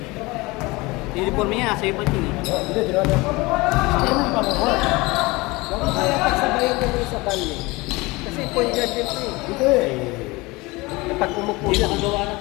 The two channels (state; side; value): quieter; right; 23.1 dB